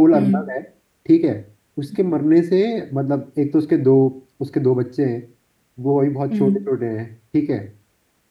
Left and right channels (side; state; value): both; identical; correlation 1.00